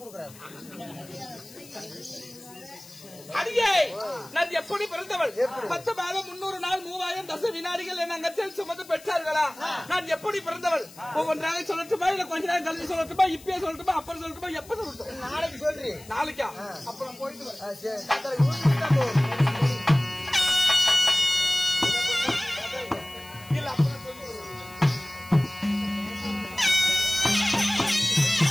கொடுக்குறாரு. அடியே நான் எப்படி பிறந்தவள்? 10 மாதம் 300 நாள் 3000 தச வினாடிகள் என் அங்கத்தில் சுமந்து பெற்றார்களா? நான் எப்படி பிறந்தவள்? ஒவ்வொன்றாக சொல்லட்டுமா இல்ல கொஞ்ச நேரம் கழிச்சு சொல்லட்டுமா? இப்பயே சொல்லட்டுமா? அப்புறம் சொல்லட்டுமா? எப்ப சொல்லட்டும்? நாளைக்கு சொல்றி. நாளைக்கா? அப்புறம் போயிட்டு இல்ல அப்புறம் சொல்லி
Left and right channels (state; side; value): noise; left; hiss, 21 dB below the sound